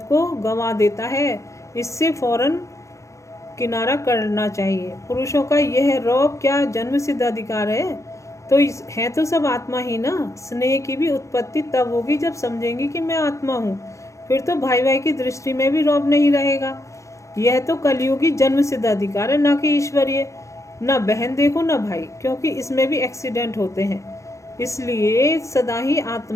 को गंवा देता है। इससे फौरन किनारा करना चाहिए। पुरुषों का यह रौब क्या जन्म सिद्ध अधिकार है। तो है तो सब आत्मा ही ना। स्नेह की भी उत्पत्ति तब होगी जब समझेंगे कि मैं आत्मा हूँ। फिर तो भाई भाई की दृष्टि में भी रौब नहीं रहेगा। यह तो कलयुगी जन्म सिद्ध अधिकार है, ना कि ईश्वरीय। ना बहन देखो ना भाई, क्योंकि इसमें भी एक्सीडेंट होते हैं। इसलिए सदा ही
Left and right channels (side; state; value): right; late; 0.15 ms